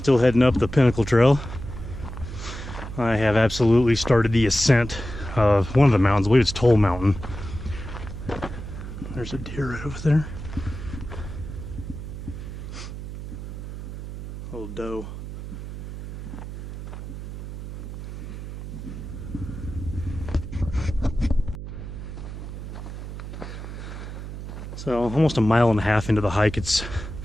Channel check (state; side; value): noise; right; hum, 9 dB below the sound